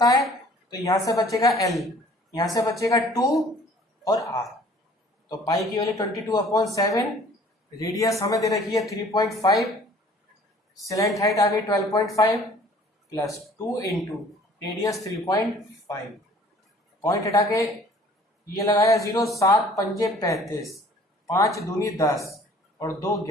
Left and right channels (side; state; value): both; normal; correlation 0.53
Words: है, तो यहाँ से बचेगा एल, यहाँ से बचेगा 2 और आर। तो पाई की वैल्यू 22/7, रेडियस हमें दे रखी है 3.5, स्लैंट हाइट आ गई 12.5 प्लस 2 इंटू रेडियस 3.5, पॉइंट हटा के ये लगाया 0, 7 पंजे 35, 5 दूनी 10 और 2